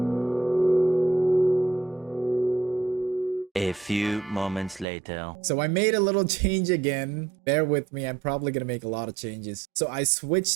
A few moments later. So I made a little change again. Bear with me, I'm probably going to make a lot of changes. So I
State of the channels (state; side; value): drops out; left; at 4.9 s